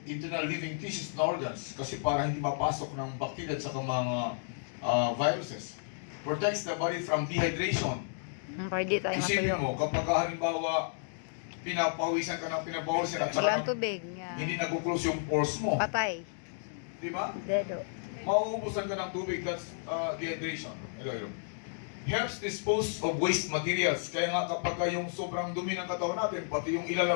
internal living tissues and organs kasi para hindi mapasok ng bacteria at saka mga viruses. Protects the body from dehydration. Pwede tayo Isipin mo, matuyo. kapag halimbawa pinapawisan ka ng pinapawisan at Walang saka tubig. Yeah. hindi nag-close yung pores mo. Patay. Di ba? Dedo. Mauubusan ka ng tubig, that's dehydration. Hello. Helps dispose of waste materials. Kaya nga kapag yung sobrang dumi ng katawan natin, pati yung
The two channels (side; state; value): right; silent; digital silence